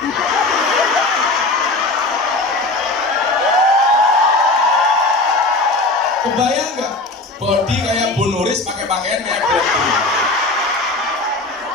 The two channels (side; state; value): right; quieter; 3.0 dB